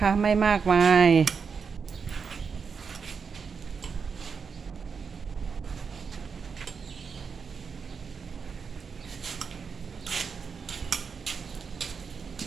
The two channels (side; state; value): left; quieter; 5.8 dB